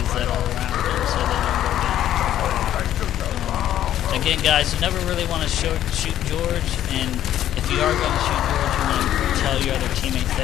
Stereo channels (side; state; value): right; quieter; 11.8 dB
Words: that are around them so they don't go down. Again, guys, you never really want to shoot George, and if you are going to shoot George, you want to tell your other teammates